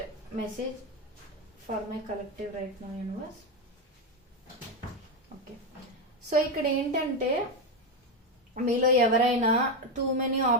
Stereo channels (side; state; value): both; normal; correlation 0.10